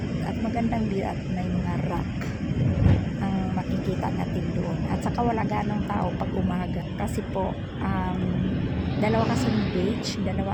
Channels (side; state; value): both; identical; correlation 1.00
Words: at magandang view at may mga rock ang makikita natin doon. At saka wala ganong tao pag umaga kasi po dalawa kasing beach,